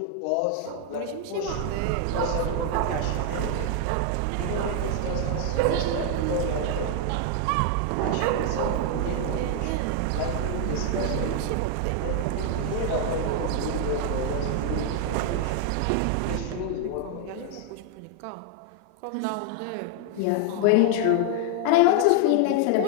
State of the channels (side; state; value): both; different; correlation 0.00